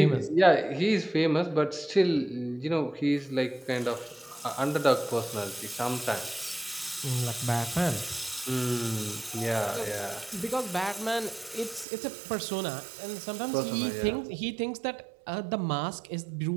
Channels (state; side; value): drops out; left; at 11.9 s